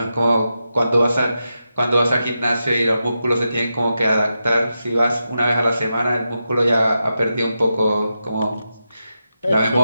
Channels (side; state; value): both; inverted; correlation -0.89